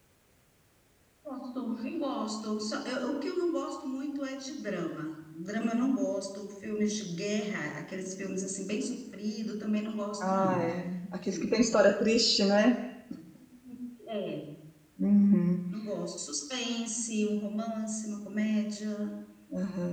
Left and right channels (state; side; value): identical; both; correlation 1.00